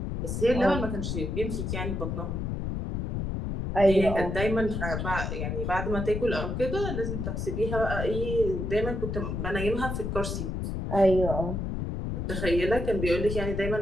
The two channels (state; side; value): noise; left; rumble, 3 dB below the sound